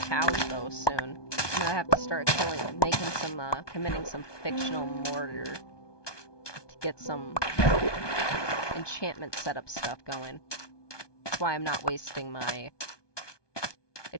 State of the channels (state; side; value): late; right; 1.2 ms